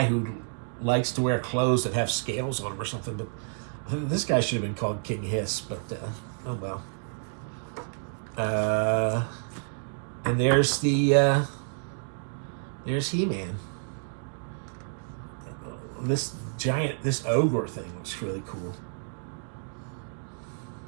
who likes to wear clothes that have scales on them or something. But this guy should have been called King Hiss, but oh well. And there's there's He-Man. This ogre thing looks really cool.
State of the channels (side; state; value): left; silent; digital silence